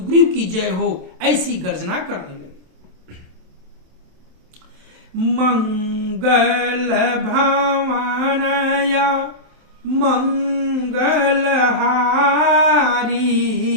की जय हो ऐसी गर्जना करने लगे। मंगल भवनया मंगलहारी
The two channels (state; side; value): late; left; 27 ms